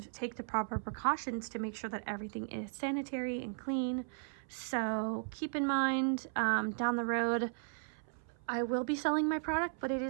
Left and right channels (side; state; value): left; silent; 54 dB below the other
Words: take the proper precautions to make sure that everything is sanitary and clean. So keep in mind, down the road, I will be selling my product, but it